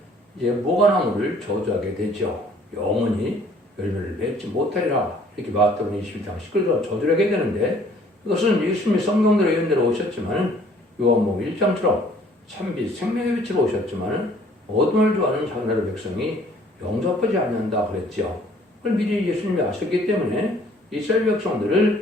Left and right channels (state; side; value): normal; both; correlation 0.58